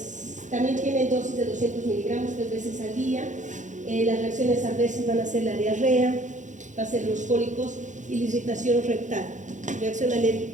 También tiene dosis de 200 miligramos 3 veces al día. Las reacciones adversas van a ser la diarrea, va a ser los cólicos y la irritación rectal, reacción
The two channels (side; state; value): left; late; 0.36 ms